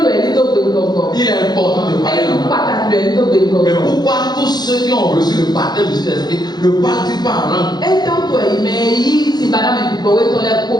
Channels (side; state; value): right; late; 0.20 ms